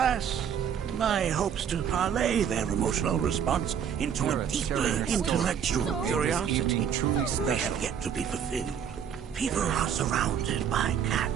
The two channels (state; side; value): quieter; left; 8.2 dB